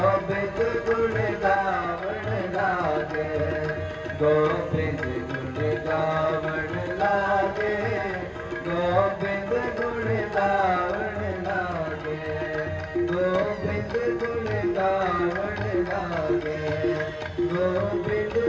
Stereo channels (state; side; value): identical; both; correlation 1.00